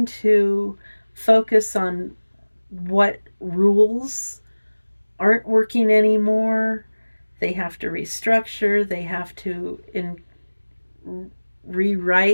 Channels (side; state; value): both; inverted; correlation -1.00